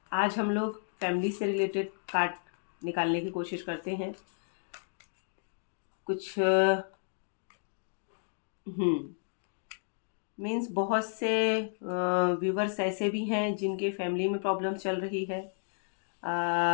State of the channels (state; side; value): silent; right; digital silence